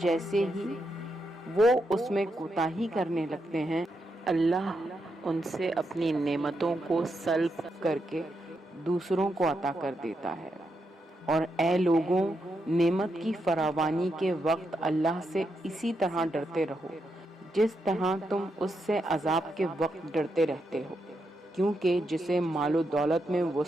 ہی وہ اس میں کوتاہی کرنے لگتے ہیں اللہ ان سے اپنی نعمتوں کو سلب کر کے دوسروں کو عطا کر دیتا ہے۔ اور اے لوگوں، نعمت کی فراوانی کے وقت اللہ سے اسی طرح ڈرتے رہو جس طرح تم اس سے عذاب کے وقت ڈرتے رہتے ہو، کیونکہ جسے مال و دولت میں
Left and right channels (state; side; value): normal; both; correlation 0.83